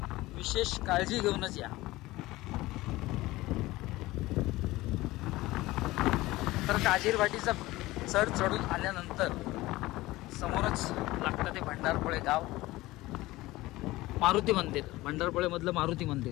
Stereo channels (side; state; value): right; quieter; 18.7 dB